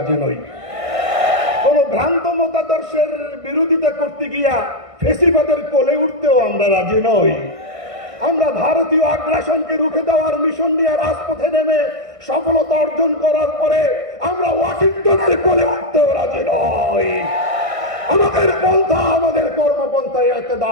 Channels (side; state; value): left; late; 1.6 ms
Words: নই। কোন ভ্রান্ত মতাদর্শের বিরোধিতা করতে গিয়া ফেসিবাদের কোলে উঠতেও আমরা রাজি নই। আমরা ভারতীয় আগ্রাসনকে রুখে দেওয়ার মিশন নিয়ে রাজপথে নেমে সফলতা অর্জন করার পরে আমরা ওয়াশিংটনের কোলে উঠতেও রাজি নই। আমাদের পন্থা, আমাদের কর্মপন্থা